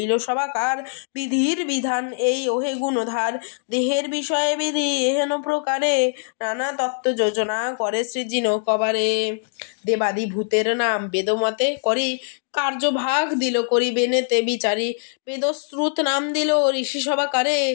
সবাকার, বিধির বিধান এই ওহে গুণধার, দেহের বিষয়ে বিধি এহেন প্রকারে, নানা তত্ত্ব যোজনা করে সৃজিন কবারে। দেবাদি ভূতের নাম বেদমতে করি, কার্যভাগ দিল করিবেনেতে বিচারি, বেদশ্রুত নাম দিল ঋষি সবাকারে,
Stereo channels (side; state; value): right; silent; digital silence